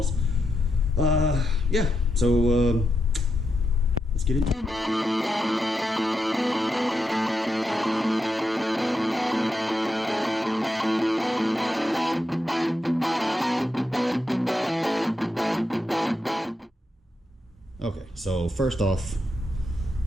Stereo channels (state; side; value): normal; both; correlation 0.84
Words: Yeah, so let's get into it. Okay, so first off,